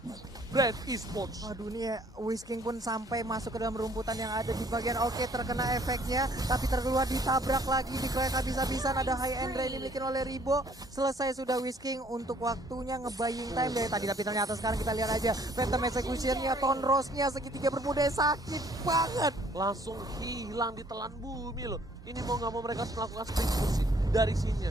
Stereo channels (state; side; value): normal; both; correlation 0.61